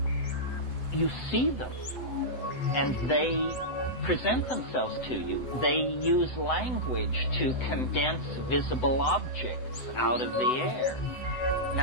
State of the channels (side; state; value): right; late; 7.9 ms